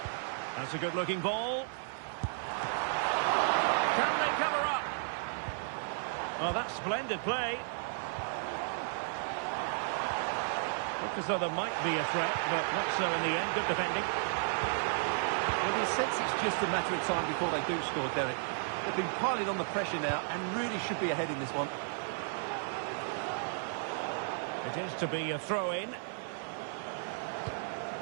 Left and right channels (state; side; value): silent; left; digital silence